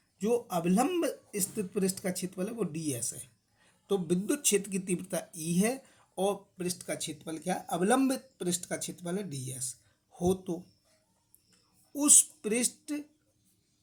जो अभिलंब स्थित पृष्ठ का क्षेत्रफल है वो डीएस है। तो विद्युत क्षेत्र की तीव्रता ई है और पृष्ठ का क्षेत्रफल क्या है, अवलंबित पृष्ठ का क्षेत्रफल है डीएस हो, तो उस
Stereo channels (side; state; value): both; identical; correlation 1.00